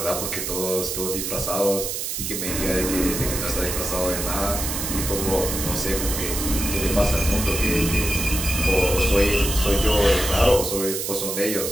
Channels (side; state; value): right; noise; hiss, 3 dB below the sound